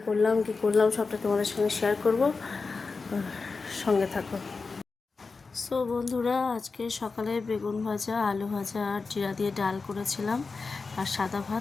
করলাম, কী করলাম সবটা তোমাদের সঙ্গে শেয়ার করব, সঙ্গে থাকো। সো বন্ধুরা, আজকে সকালে বেগুন ভাজা, আলু ভাজা আর জিরা দিয়ে ডাল করেছিলাম, আর সাদা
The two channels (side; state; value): right; quieter; 4.3 dB